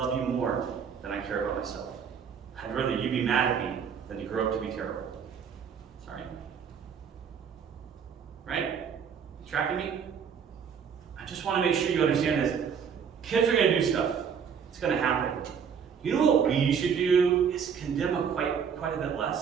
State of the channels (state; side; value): quieter; left; 7.0 dB